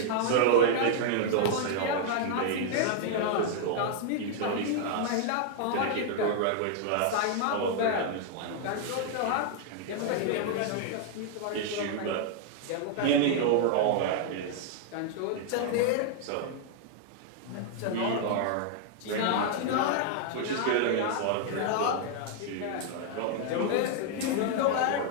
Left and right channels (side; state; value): both; different; correlation 0.00